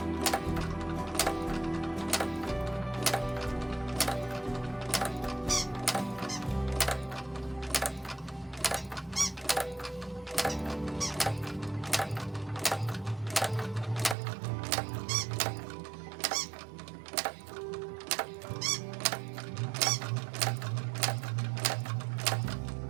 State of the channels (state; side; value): drops out; left; at 14.2 s